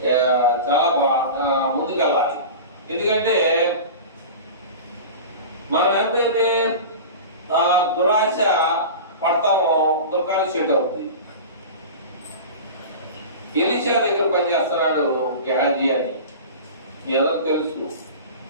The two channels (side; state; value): both; inverted; correlation -0.32